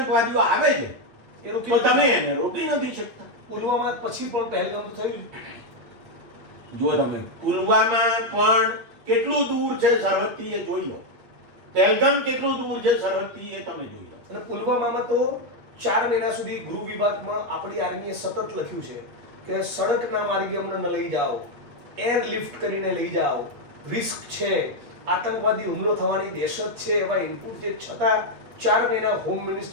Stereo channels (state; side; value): late; left; 8.5 ms